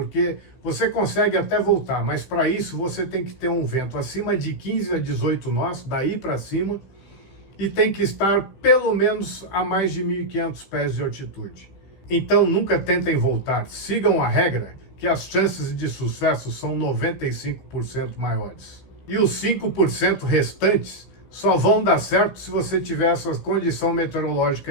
você consegue até voltar, mas para isso você tem que ter um vento acima de 15 a 18 nós, daí para cima, e tem que estar pelo menos a mais de 1.500 pés de altitude. Então nunca tentem voltar, sigam a regra, que as chances de sucesso são 95% maiores. E os 5% restantes só vão dar certo se você tiver essa condição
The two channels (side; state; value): right; late; 15 ms